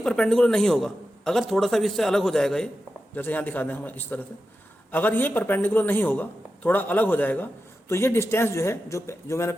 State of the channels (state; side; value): normal; both; correlation 0.91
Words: परपेंडिकुलर नहीं होगा, अगर थोड़ा सा भी इससे अलग हो जाएगा, ये जैसे यहाँ दिखा दें हम इस तरह से, अगर ये परपेंडिकुलर नहीं होगा, थोड़ा अलग हो जाएगा, तो ये डिस्टेंस जो है जो मैंने